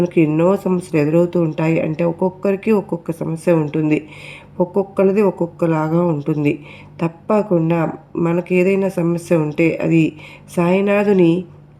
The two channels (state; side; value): identical; both; correlation 1.00